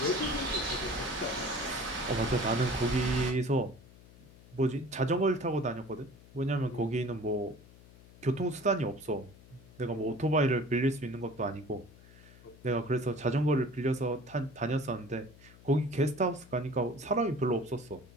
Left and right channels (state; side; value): noise; left; hum, 22 dB below the sound